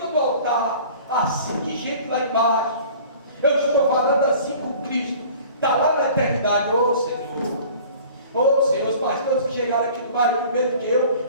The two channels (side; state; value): both; inverted; correlation -0.46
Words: do altar, assim de gente lá embaixo, eu estou falando assim com Cristo, está lá na eternidade. Ô Senhor, os pastores que chegaram aqui no bairro primeiro que eu